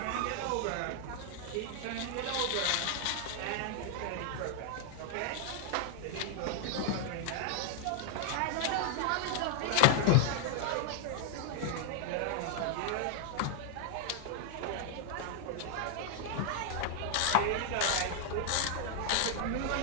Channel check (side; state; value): both; different; correlation 0.00